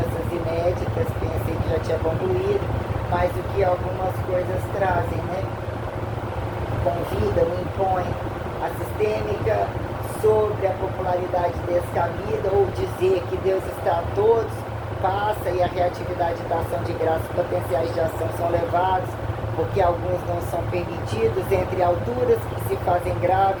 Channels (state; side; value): identical; both; correlation 1.00